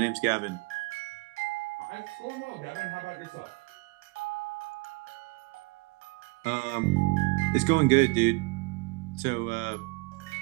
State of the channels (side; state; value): left; quieter; 27.1 dB